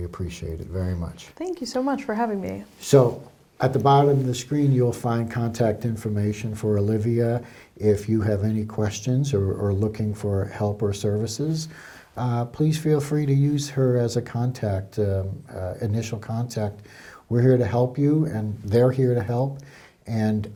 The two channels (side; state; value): both; identical; correlation 1.00